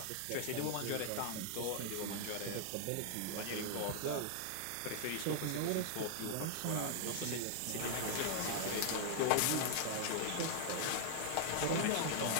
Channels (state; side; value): different; both; correlation 0.00